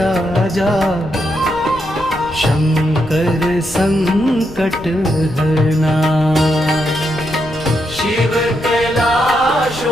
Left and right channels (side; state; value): left; noise; rumble, 16 dB below the sound